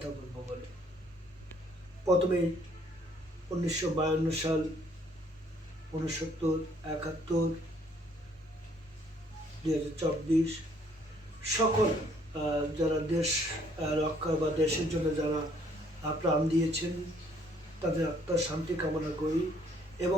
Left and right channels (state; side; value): normal; both; correlation 0.64